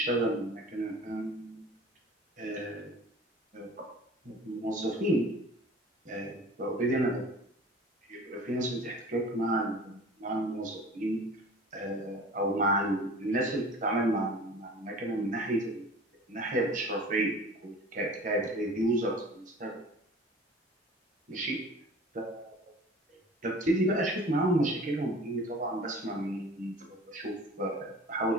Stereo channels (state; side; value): normal; both; correlation 0.43